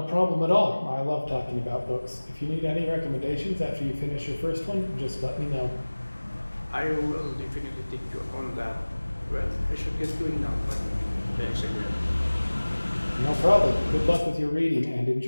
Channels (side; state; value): both; inverted; correlation -1.00